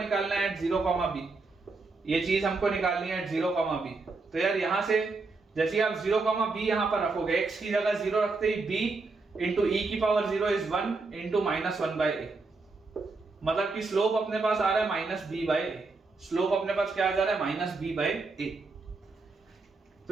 है एट 0,b, ये चीज हमको निकालनी है एट 0,b। तो यार यहां से जैसे आप 0,b यहां पर रखोगे, x की जगह 0 रखते ही b into e की power 0 is 1 into minus 1/a, मतलब कि स्लोप अपने पास आ रहा है -b/a, स्लोप अपने पास क्या आ जा रहा है -b/a।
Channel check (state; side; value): quieter; left; 3.8 dB